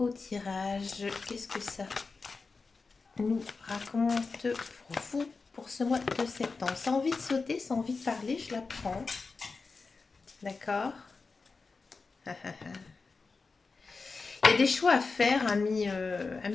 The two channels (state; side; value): quieter; right; 4.3 dB